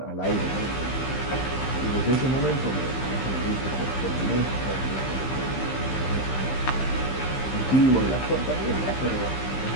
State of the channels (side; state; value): right; late; 15 ms